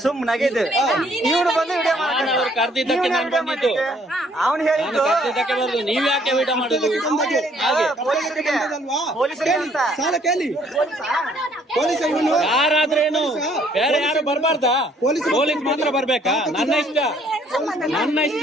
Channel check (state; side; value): normal; both; correlation 0.63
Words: ಸುಮ್ಮನಾಗಿದ್ದೇವೆ. ಇವ್ರು ಬಂದು ವಿಡಿಯೋ ಅವ್ರು ಕರ್ದಿದ್ದಕ್ಕೆ ನಾನು ಬಂದಿದ್ದು. ಅವನು ಹೇಳಿದ್ದು ಕರ್ದಿದ್ದಕ್ಕೆ ಬರುದು. ನೀವ್ ಯಾಕೆ ವಿಡಿಯೋ ಮಾಡುದು? ಹಾಗೆ ಯಾರಾದ್ರೇನು, ಬೇರೆ ಯಾರು ಬರ್ಬಾರ್ದಾ? ಪೊಲೀಸ್ ಮಾತ್ರ ಬರ್ಬೇಕಾ? ನನ್ನ ಇಷ್ಟ.